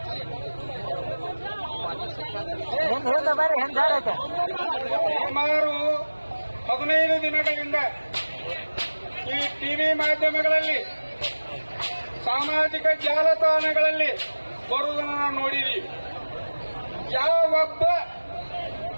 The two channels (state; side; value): inverted; both; correlation -1.00